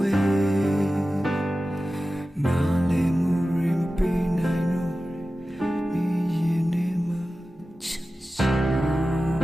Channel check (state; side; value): normal; both; correlation 0.95